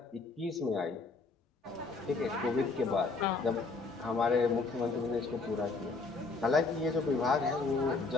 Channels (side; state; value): right; quieter; 4.0 dB